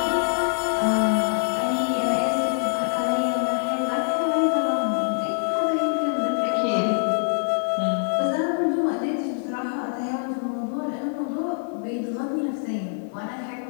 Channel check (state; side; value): silent; right; 62 dB below the other